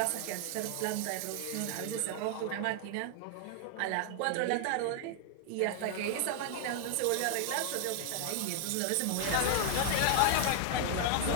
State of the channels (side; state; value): both; different; correlation 0.00